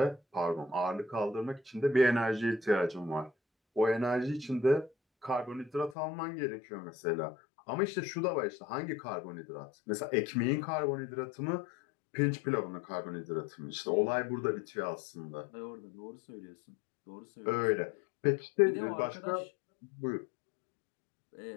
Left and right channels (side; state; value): right; drops out; at 6.0 s